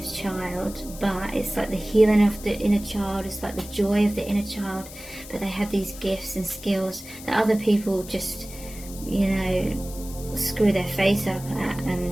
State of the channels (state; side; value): noise; left; hiss, 15 dB below the sound